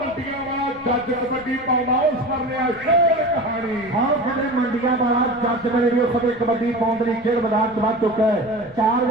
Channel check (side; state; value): left; noise; rumble, 23 dB below the sound